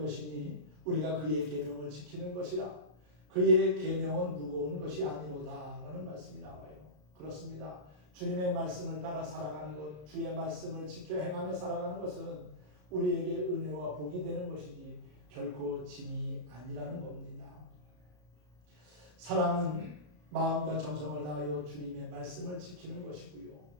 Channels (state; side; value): late; left; 33 ms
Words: 우리가 그의 계명을 지키는 것이라. 그의 계명은 무거운 것이 아니로다 라는 말씀이 나와요. 그렇습니다. 주님의 말씀을 따라 살아가는 것, 주의 말씀을 지켜 행하며 살아가는 것은 우리에게 은혜와 복이 되는 것이지 결코 짐이 아니라는 겁니다. 사랑은 마음과 정성을 다하여 주님의 말씀을 지키는 것이고요.